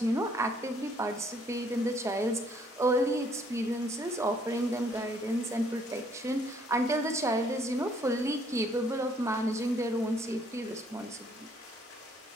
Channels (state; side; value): normal; both; correlation 0.65